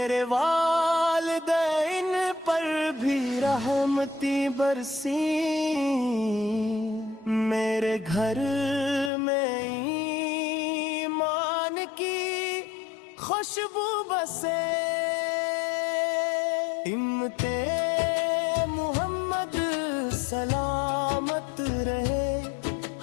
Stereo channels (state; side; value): drops out; right; at 9.1 s